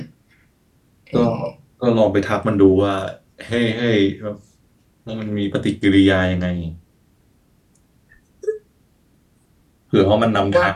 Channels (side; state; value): both; identical; correlation 1.00